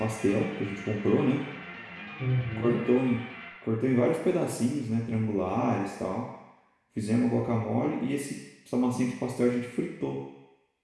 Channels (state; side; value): identical; both; correlation 1.00